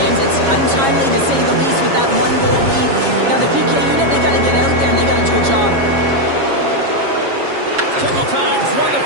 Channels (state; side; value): late; left; 7.3 ms